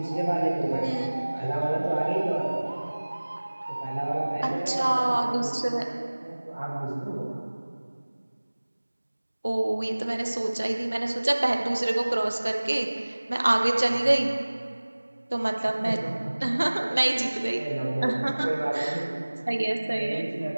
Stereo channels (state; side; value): inverted; both; correlation -1.00